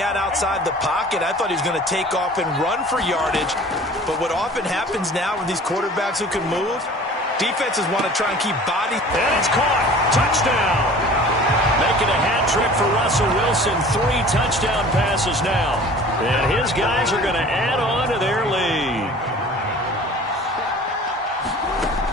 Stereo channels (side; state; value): both; normal; correlation 0.45